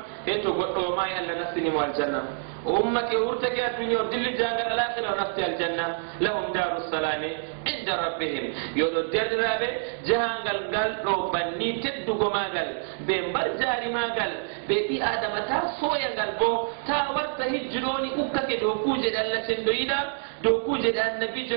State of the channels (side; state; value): left; silent; digital silence